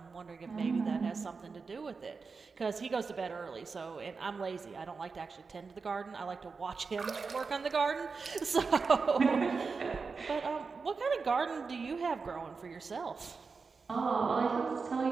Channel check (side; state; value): left; quieter; 4.8 dB